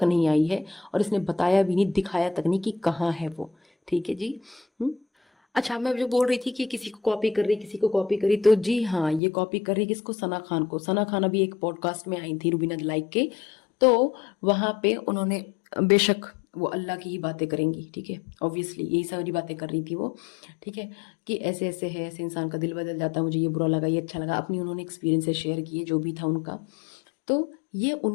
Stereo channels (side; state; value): right; drops out; at 9.2 s